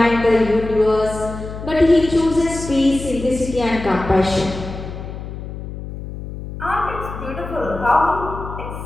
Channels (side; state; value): left; noise; hum, 10 dB below the sound